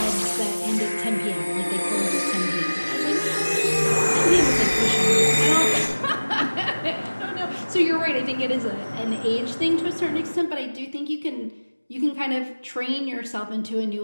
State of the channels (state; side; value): inverted; both; correlation -1.00